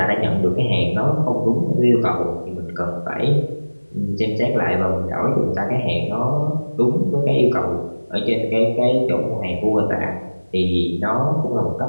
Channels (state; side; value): inverted; both; correlation -1.00